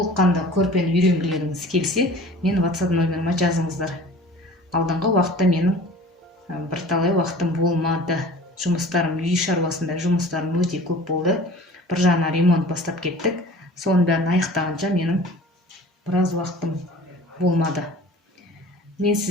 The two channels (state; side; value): normal; both; correlation 0.43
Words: көрпені үйренгілеріңіз келсе, мен WhatsApp номеріме жазыңыздар. Алдыңғы уақытта менің бірталай уақытым болмады. Жұмыстарым, үй шаруасында жұмыстарым өте көп болды. Бір жағынан ремонт бастап кеттік. Соның бәрін аяқтағанша менің біраз уақытым болмады. Мен